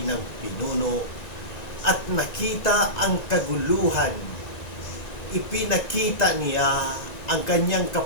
ng pinuno at nakita ang kaguluhan, ipinakita niya ang kanyang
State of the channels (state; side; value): late; right; 1.9 ms